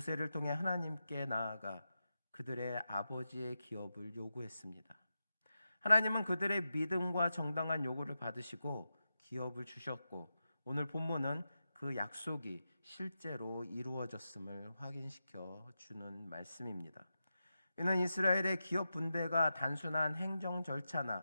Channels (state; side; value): inverted; both; correlation -0.89